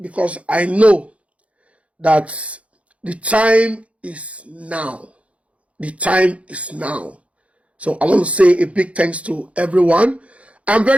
I know that the time is now. The time is now. So I want to say a big thanks to everyone. I'm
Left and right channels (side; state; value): left; late; 0.064 ms